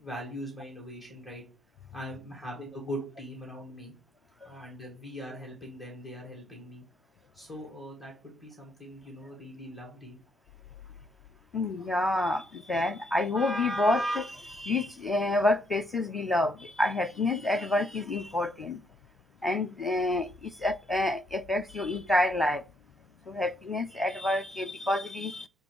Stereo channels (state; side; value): normal; both; correlation 0.73